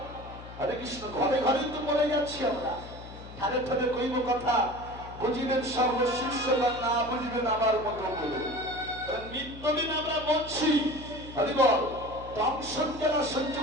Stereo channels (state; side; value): noise; left; hum, 15 dB below the sound